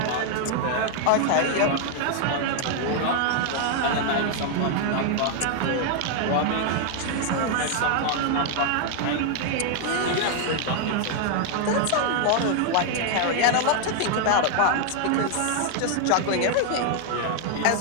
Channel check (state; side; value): different; both; correlation 0.00